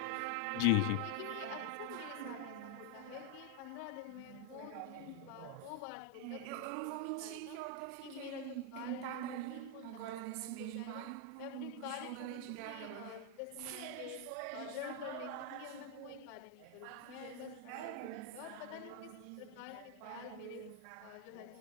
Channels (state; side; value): different; both; correlation 0.01